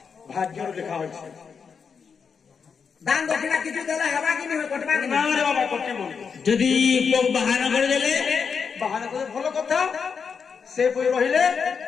भाग्य लिखा हो दान दक्षिणा किछु देला हवा कि नहीं कटबा कि ना रे बाबा कटे बोल यदि लोग बहाना कर देले बहाना करे भलो कथा से पुई रहिले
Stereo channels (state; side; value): quieter; right; 6.1 dB